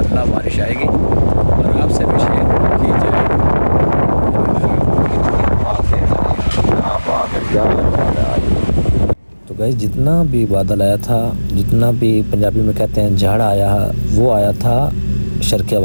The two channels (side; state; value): both; inverted; correlation -1.00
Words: बारिश आएगी और आपसे भी शेयर की जाएगी। तो गाइस जितना भी बादल आया था, जितना भी पंजाबी में कहते हैं झाड़ आया, वो आया था शर्किया